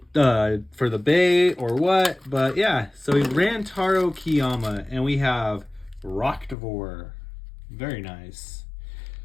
bay or what, but yeah. So Rantaro Kiyama, and we have Roktavor. Very nice.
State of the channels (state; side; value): drops out; right; at 6.6 s